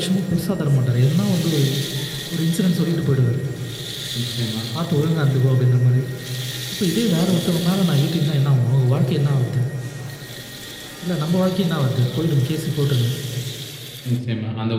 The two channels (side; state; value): both; identical; correlation 1.00